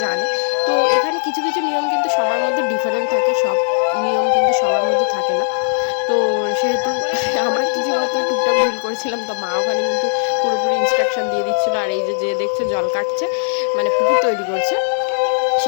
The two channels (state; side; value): silent; right; 67 dB below the other